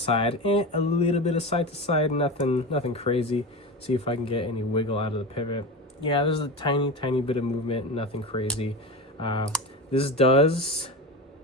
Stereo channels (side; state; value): both; normal; correlation 0.24